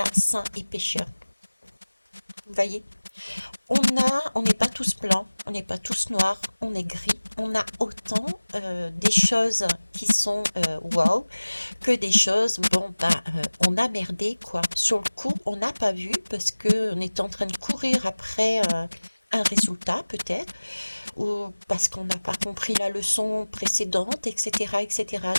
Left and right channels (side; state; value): both; inverted; correlation -1.00